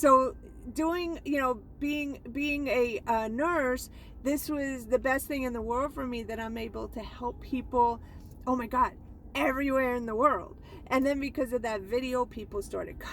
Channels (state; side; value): identical; both; correlation 1.00